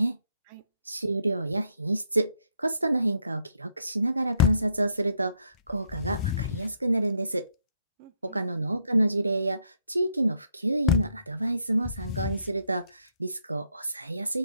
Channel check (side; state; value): both; inverted; correlation -0.73